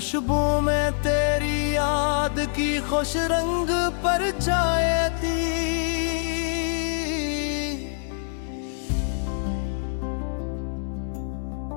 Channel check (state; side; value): silent; right; digital silence